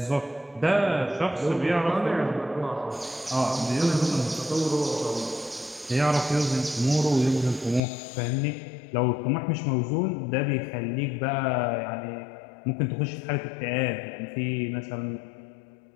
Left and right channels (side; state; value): right; drops out; at 7.8 s